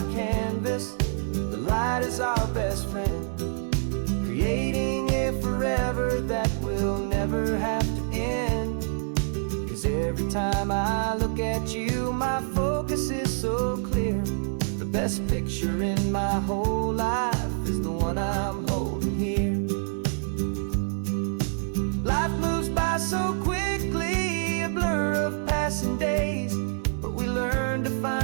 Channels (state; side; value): silent; left; digital silence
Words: canvas, the light is our best friend, creating a forever that will never have to end. 'Cause every time I look at you, my focus is so clear. The best picture in my whole life is the one I'm holding here. Life moves by so quickly, a blur of passing days, but we learn to